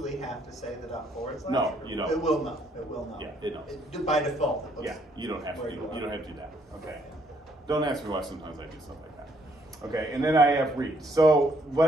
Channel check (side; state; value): both; normal; correlation 0.68